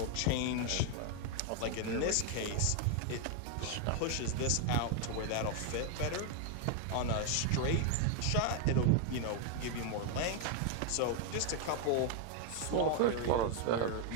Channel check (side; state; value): both; different; correlation 0.01